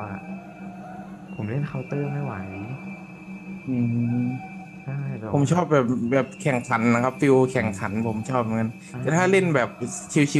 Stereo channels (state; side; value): identical; both; correlation 1.00